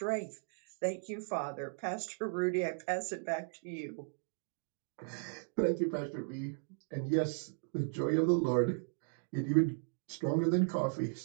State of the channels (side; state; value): left; silent; digital silence